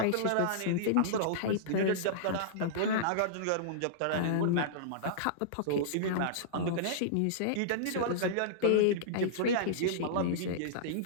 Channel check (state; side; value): different; both; correlation -0.02